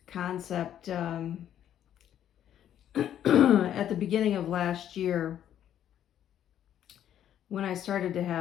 concept at the beginning of last year when I started to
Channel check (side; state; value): right; quieter; 10.6 dB